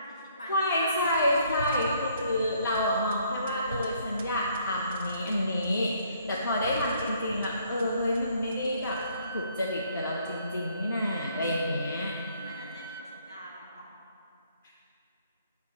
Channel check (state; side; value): inverted; both; correlation -0.65